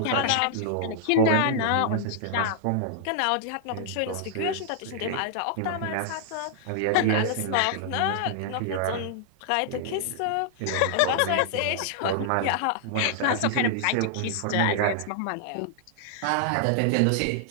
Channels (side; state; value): both; different; correlation -0.01